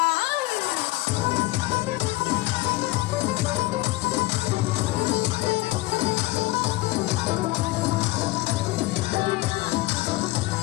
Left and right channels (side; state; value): right; quieter; 18.9 dB